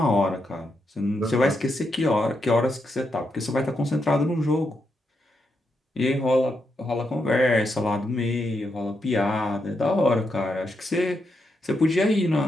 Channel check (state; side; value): normal; both; correlation 0.82